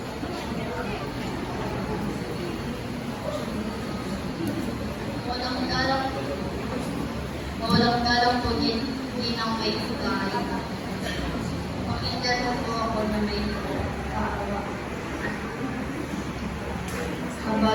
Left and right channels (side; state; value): both; identical; correlation 1.00